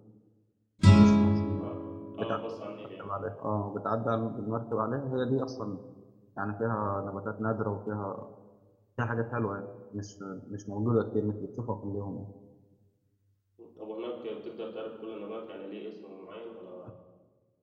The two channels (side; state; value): both; identical; correlation 1.00